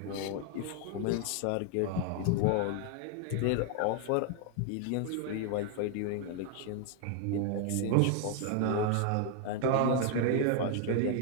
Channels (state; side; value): different; both; correlation 0.00